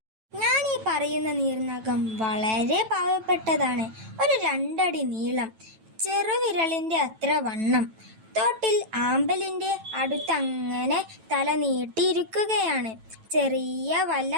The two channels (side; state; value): left; late; 9.1 ms